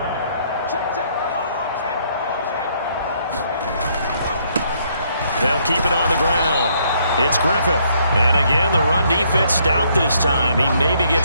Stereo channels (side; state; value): both; inverted; correlation -0.69